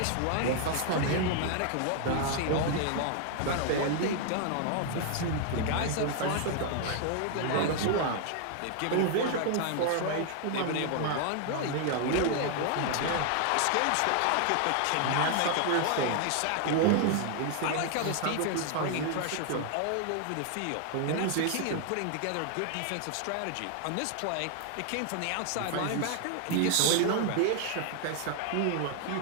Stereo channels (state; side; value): different; both; correlation 0.00